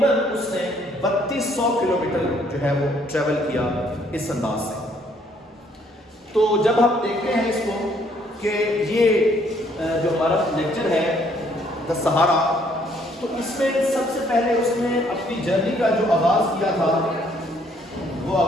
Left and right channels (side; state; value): both; normal; correlation 0.65